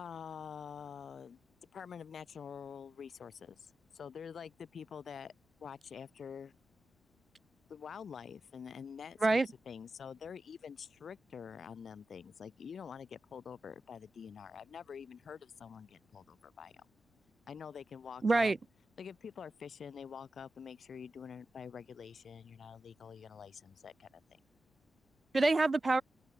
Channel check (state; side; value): normal; both; correlation 0.93